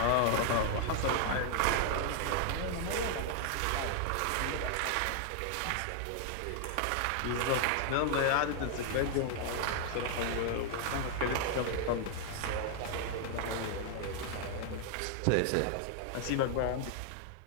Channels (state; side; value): different; both; correlation 0.00